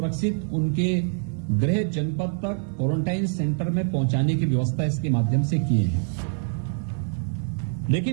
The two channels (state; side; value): silent; left; 57 dB below the other